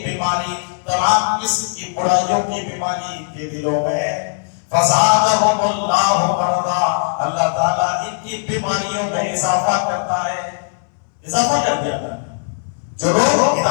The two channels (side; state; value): right; silent; 67 dB below the other